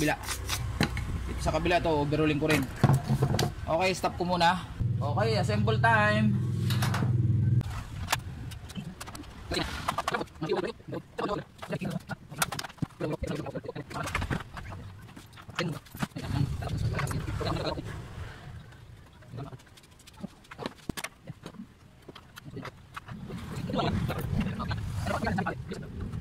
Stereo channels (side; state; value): both; identical; correlation 1.00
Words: Dito sa kabila to, overhauling ko rin. Okay, stop ko muna. Okay, assemble time.